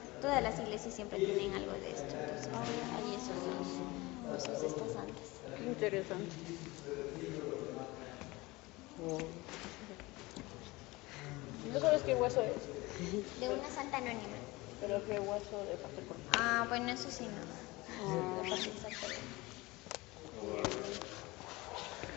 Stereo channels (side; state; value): right; quieter; 21.9 dB